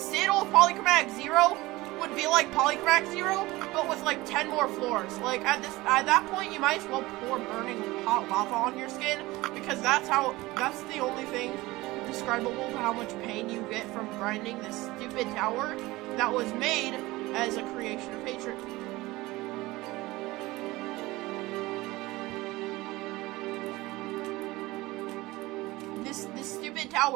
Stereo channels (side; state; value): left; quieter; 19.8 dB